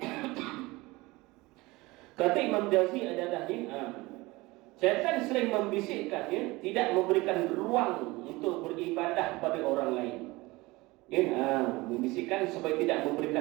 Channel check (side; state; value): left; quieter; 21.7 dB